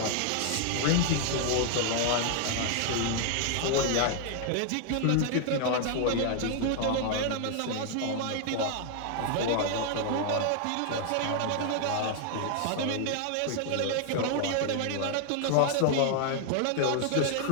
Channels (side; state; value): both; different; correlation 0.00